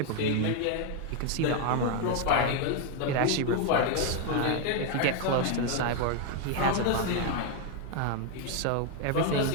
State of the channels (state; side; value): different; both; correlation 0.01